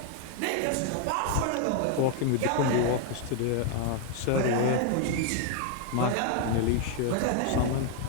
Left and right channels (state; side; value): different; both; correlation 0.00